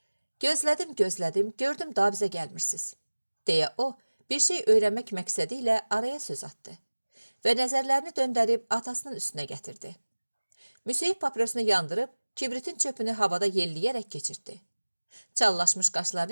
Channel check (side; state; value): both; inverted; correlation -1.00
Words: Gözlədim, gördüm daha bizə gəlmirsiniz. Deyə o, bir şey öyrənmək məqsədi ilə araya söz atdı və nəzərlərini döndərib atasının üstünə gətirdi. Müseyib papirosunu yandırıb, kibritin çöpünü havada yelləyərək keçirtdi. Çallaşmış